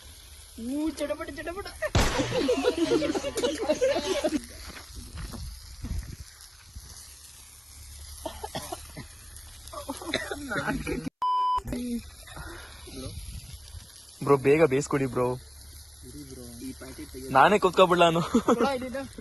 ಚಟಪಟ ಚಟಪಟ. ಬ್ರೋ ಬೇಗ ಬೇಯಿಸ್ಕೊಡಿ ಬ್ರೋ. ನಾನೇ ಕುತ್ಕೊಬಿಡ್ಲ ನಾನು.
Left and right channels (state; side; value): identical; both; correlation 1.00